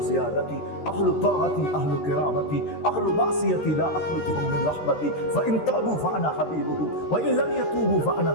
জিয়াদাতি আহলু তাআতি আহলু কিরামাতি আহলু মাসিয়াতি লা আখলুতুহুম মিন রাহমাতি ফাইন তাবু ফাআনা হাবিবুহুম ওয়া ইন লাম ইয়াতুবু ফাআনা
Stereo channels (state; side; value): late; right; 13 ms